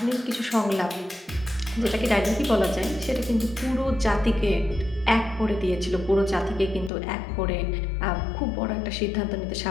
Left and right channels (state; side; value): drops out; right; at 6.9 s